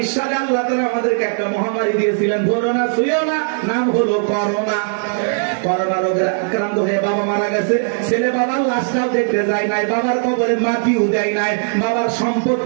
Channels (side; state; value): left; silent; 65 dB below the other